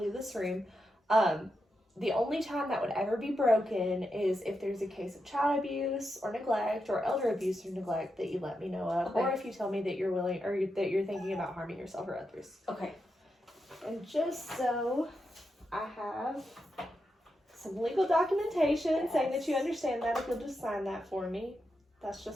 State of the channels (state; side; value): normal; both; correlation 0.86